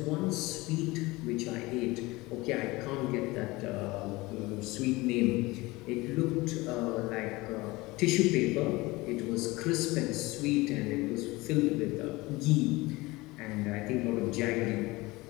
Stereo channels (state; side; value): quieter; right; 21.6 dB